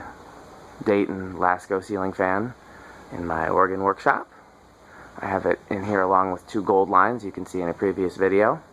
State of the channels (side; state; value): both; identical; correlation 1.00